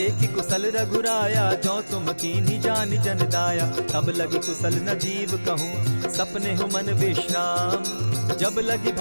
कुशल रघुराया, जो तुम कीन्ही जानि जन दाया। तब लगी कुशल न जीव कहूँ, सपने हो मन विश्राम। जब लगी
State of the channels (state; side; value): inverted; both; correlation -1.00